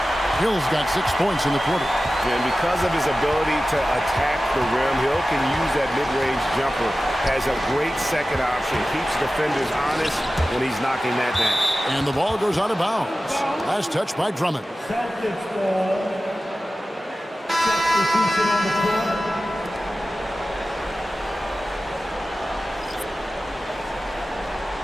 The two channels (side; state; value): both; normal; correlation 0.95